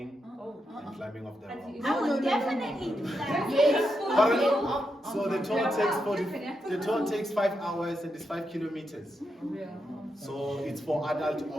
and climbing up the rock. I would definitely do that. Pardon? So the tour takes 5 hours and it's 5 kilometers. So it's for adult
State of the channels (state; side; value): normal; both; correlation 0.84